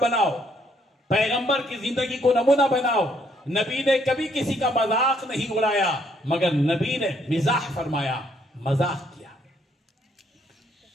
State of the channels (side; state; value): both; normal; correlation 0.69